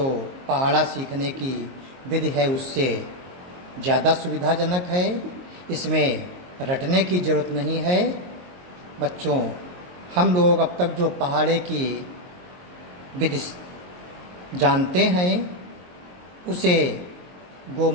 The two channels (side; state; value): left; late; 22 ms